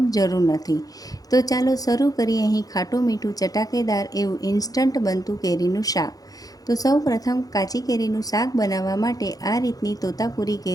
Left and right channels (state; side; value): late; right; 0.18 ms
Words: જરૂર નથી। તો ચાલો શરૂ કરીએ। અહીં ખાટું મીઠું ચટાકેદાર એવું ઇન્સ્ટન્ટ બનતું કેરીનું શાક। તો સૌ પ્રથમ કાચી કેરીનું શાક બનાવવા માટે આ રીતની તોતાપુરી